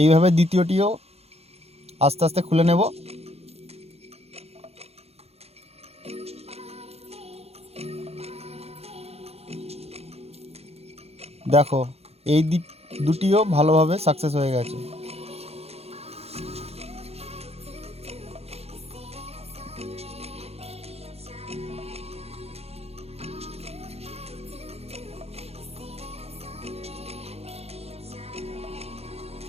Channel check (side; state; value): left; late; 0.30 ms